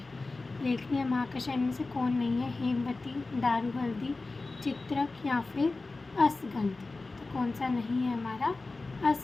लेखनीय महाकषाय में से कौन नहीं है? हेमवती, दारू हल्दी, चित्रक या फिर असगंध। तो कौन सा नहीं है हमारा?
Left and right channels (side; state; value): right; quieter; 3.5 dB